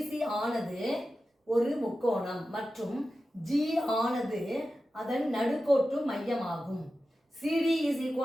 ஆனது ஒரு முக்கோணம் மற்றும் ஜி ஆனது அதன் நடுக்கோட்டு மையமாகும். CD is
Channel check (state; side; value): normal; both; correlation 0.93